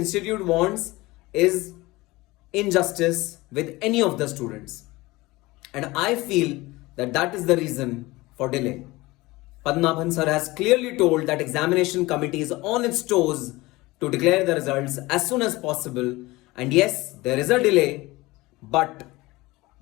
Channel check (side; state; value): right; quieter; 20.8 dB